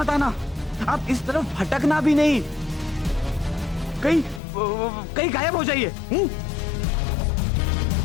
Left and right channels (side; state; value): right; drops out; at 4.4 s